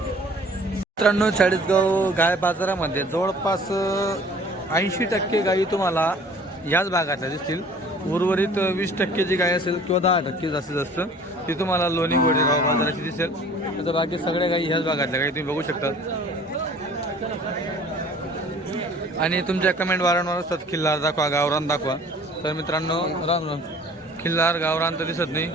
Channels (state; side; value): normal; both; correlation 0.50